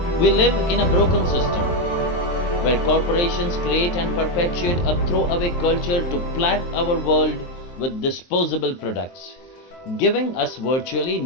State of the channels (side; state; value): right; late; 23 ms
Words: We live in a broken system where corporations create and perpetuate a throwaway culture to plague our world with disposable products, giving us virtually